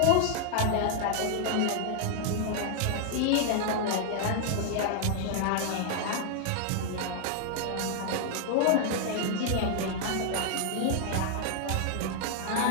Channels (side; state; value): both; different; correlation 0.00